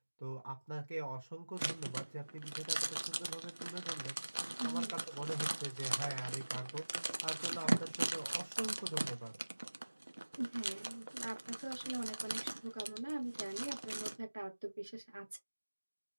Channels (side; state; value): both; inverted; correlation -1.00